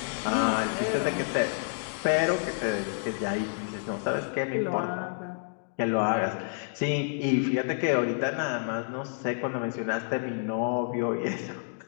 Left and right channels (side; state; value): right; silent; digital silence